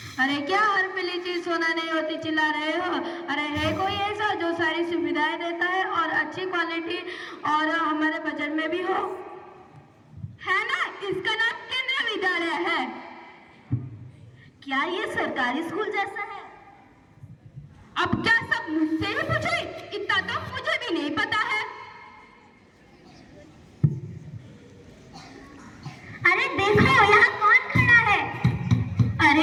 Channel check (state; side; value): identical; both; correlation 1.00